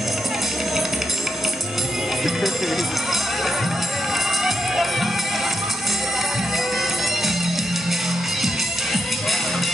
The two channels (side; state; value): both; normal; correlation 0.82